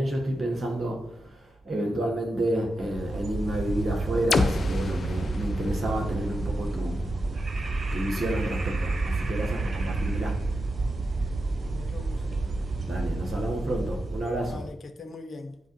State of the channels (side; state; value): both; normal; correlation 0.88